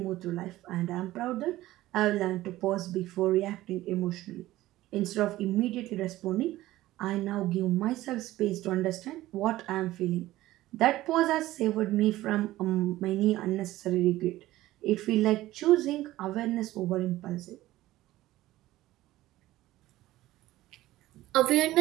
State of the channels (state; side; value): quieter; left; 16.1 dB